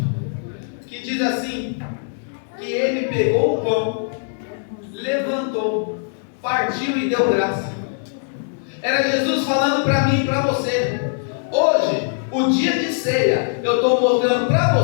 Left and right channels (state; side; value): silent; right; digital silence